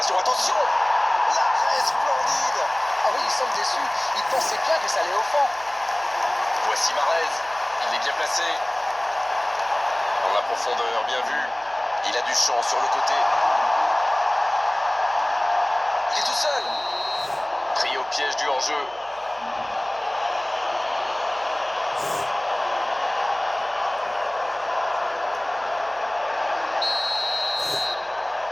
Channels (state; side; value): noise; right; hum, 28 dB below the sound